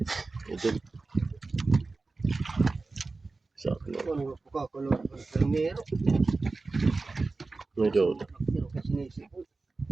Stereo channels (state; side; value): quieter; left; 3.7 dB